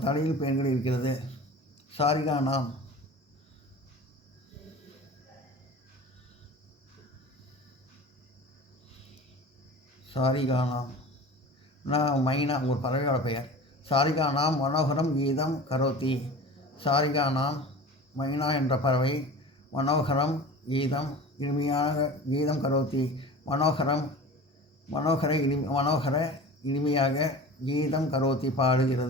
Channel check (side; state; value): both; normal; correlation 0.37